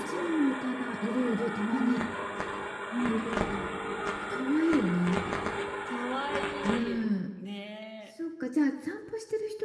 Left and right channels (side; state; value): both; identical; correlation 1.00